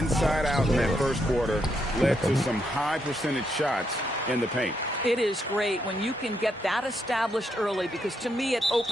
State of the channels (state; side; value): normal; both; correlation 0.78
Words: out in that first quarter led to some high percentage shots in the paint. It is great when you can get that established early, because to me it